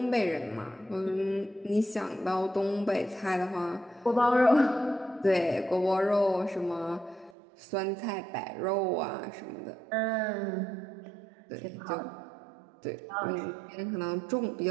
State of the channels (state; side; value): drops out; left; at 7.4 s